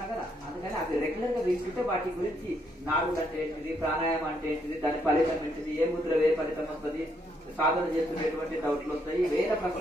కదా. అందుకని అవి రెగ్యులర్ గా వింటుంటే వాటి గురించి నాడులు అంటే ఏంటిది, ప్రాణాయామం అంటే ఏంటిది, దాని ఫలితం ఏంటిది, ఏ ముద్ర ఏ ఫలితం వస్తుంది, సాధన చేస్తున్నటువంటి డౌట్లు వస్తాయి, వేరే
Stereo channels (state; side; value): normal; both; correlation 0.74